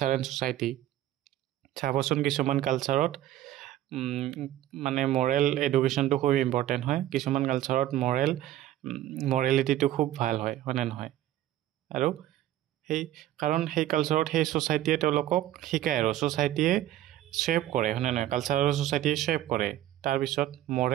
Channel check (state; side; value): quieter; left; 13.5 dB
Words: এণ্ড ছ'চাইটি চাবচোন কিছুমান কালচাৰত মানে মৰেল এডুকেশ্যনটো খুব ইম্পৰ্টেণ্ট হয় কিছুমান কালচাৰত মৰেলিটিটো খুব ভাল হয় হয়নে নহয় আৰু কাৰণ সেই কালচাৰত সেই ছ'চাইটিয়ে তেওঁলোকক শিকায় আৰু ছ'চাইটিয়ে শ্বেপ কৰে হয়নে নহয় কালচাৰ আৰু ছ'চাইটিয়ে শ্বেপ কৰে তাৰপিছত